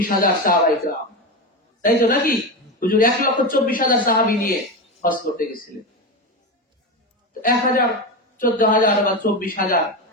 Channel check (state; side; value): normal; both; correlation 0.18